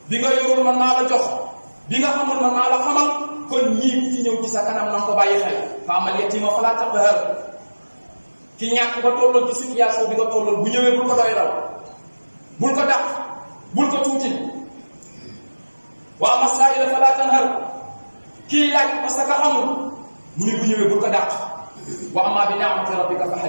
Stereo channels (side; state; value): both; inverted; correlation -1.00